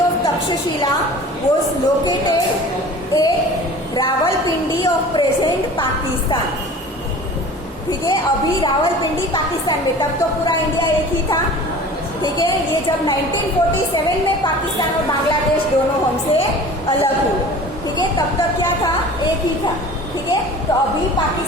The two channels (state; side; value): normal; both; correlation 0.42